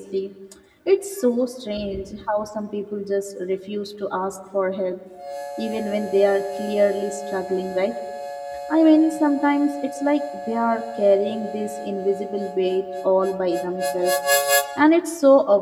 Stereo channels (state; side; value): identical; both; correlation 1.00